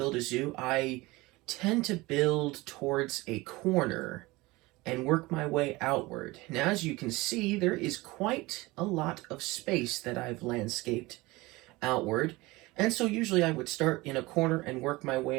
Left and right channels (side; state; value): left; quieter; 21.5 dB